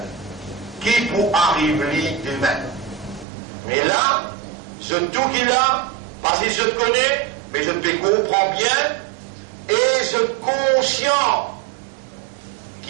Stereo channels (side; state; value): left; drops out; at 3.2 s